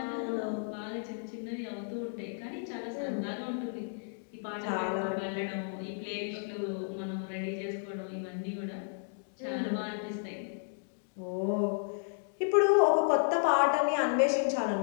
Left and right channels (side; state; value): right; silent; digital silence